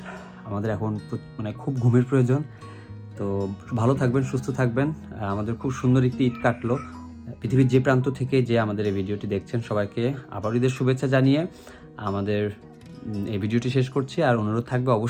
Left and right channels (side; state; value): both; identical; correlation 1.00